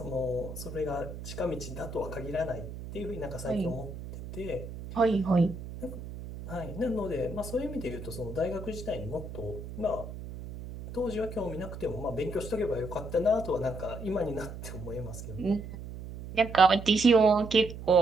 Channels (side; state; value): right; noise; hum, 10 dB below the sound